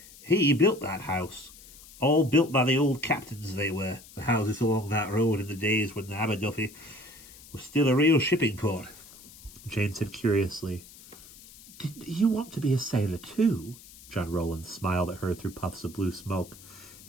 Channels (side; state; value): left; noise; hiss, 20 dB below the sound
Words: he built that house. All built by the old captains they were, the houses along that road in the days when the Aberduffy was still a real shipping port." Jane said curiously, "Did you want to be a sailor too?" John Rowland smiled at her through puffs of blue smoke